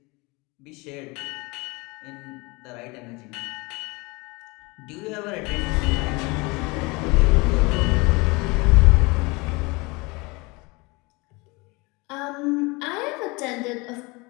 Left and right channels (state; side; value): quieter; right; 25.9 dB